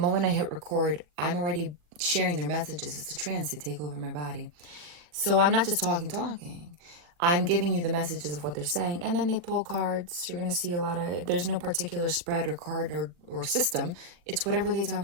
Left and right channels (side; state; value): left; late; 41 ms